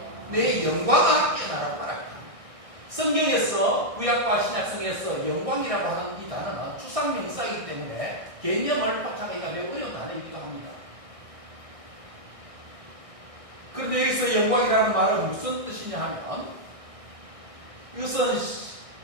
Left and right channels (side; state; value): left; late; 1.6 ms